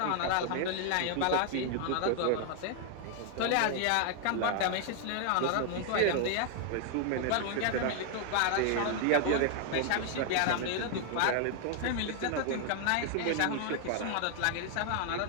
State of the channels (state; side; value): different; both; correlation 0.00